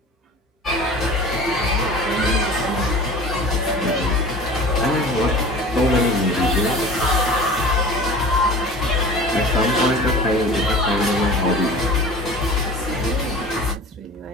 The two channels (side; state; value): both; normal; correlation 0.40